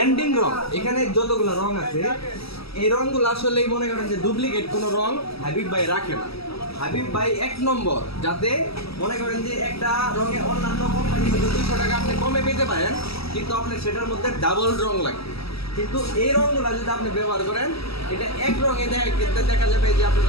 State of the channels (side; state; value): right; late; 0.76 ms